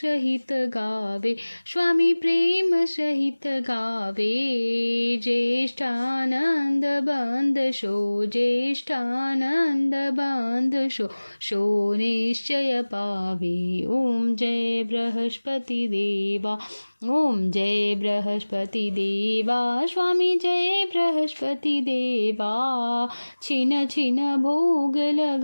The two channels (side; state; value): both; inverted; correlation -1.00